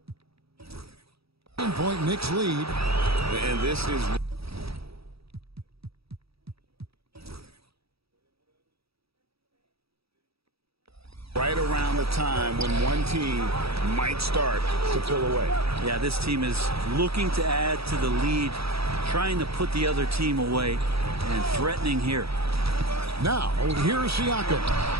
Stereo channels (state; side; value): late; left; 0.77 ms